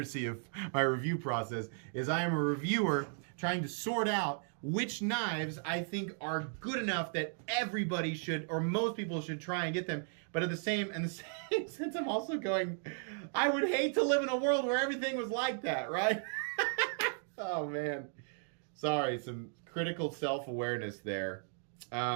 of my review process is I am a reviewer trying to sort out which knives I think are good enough that everybody should, or most people should try and get them. But in the same sense, I'm also going, I would hate to live in a world where everything was like that, right? Oh, man. Sorry, some critical self-awareness there.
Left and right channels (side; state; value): left; silent; 54 dB below the other